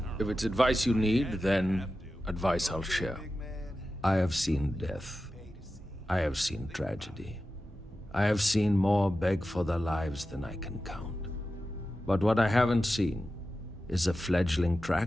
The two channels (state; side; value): normal; both; correlation 0.93